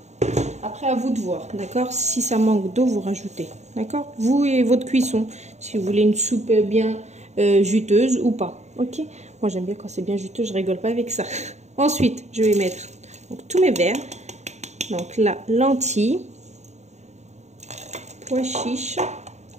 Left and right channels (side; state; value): left; late; 0.33 ms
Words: Après, à vous de voir, d'accord? Si ça manque d'eau, vous rajoutez, d'accord? Vous et votre cuisson, si vous voulez une soupe bien juteuse ou pas, ok? Moi, j'aime bien quand c'est bien juteux, je rigole pas avec ça. Ensuite, je vais mettre donc, tous mes verres. Donc là, lentilles, pois chiches,